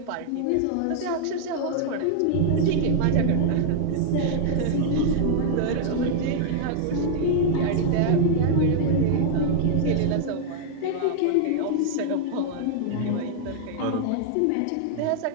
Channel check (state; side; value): different; both; correlation 0.00